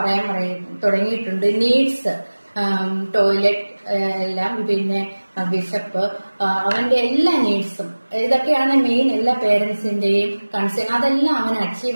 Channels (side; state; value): both; inverted; correlation -1.00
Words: തുടങ്ങിയിട്ടുണ്ട്. നീഡ്സ്, ടോയ്ലറ്റ് എല്ലാം, പിന്നെ വിശപ്പ്, അവന്റെ എല്ലാ നീഡ്സും, ഇതൊക്കെയാണ് മെയിൻ എല്ലാ പേരൻസിന്റെയും കൺസേൺ. അതെല്ലാം അവൻ